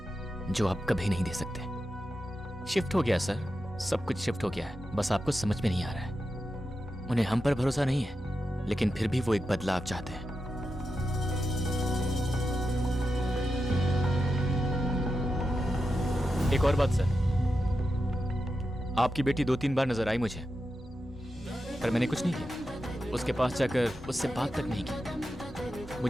जो आप कभी नहीं दे सकते। शिफ्ट हो गया सर, सब कुछ शिफ्ट हो गया है, बस आपको समझ में नहीं आ रहा है। उन्हें हम पर भरोसा नहीं है, लेकिन फिर भी वो एक बदलाव चाहते हैं। एक और बात सर, आपकी बेटी 2-3 बार नजर आई मुझे। पर मैंने कुछ नहीं किया। उसके पास जाकर उससे बात तक नहीं की।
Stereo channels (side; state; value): both; normal; correlation 0.89